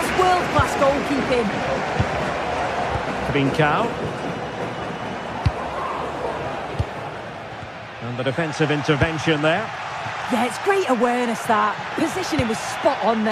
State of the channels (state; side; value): identical; both; correlation 1.00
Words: world-class goalkeeping. Trincao. And the defensive intervention there. Yeah, it's great awareness, that. Positioning was spot on